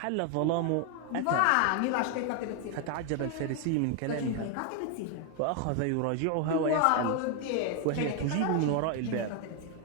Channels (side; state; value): both; different; correlation 0.01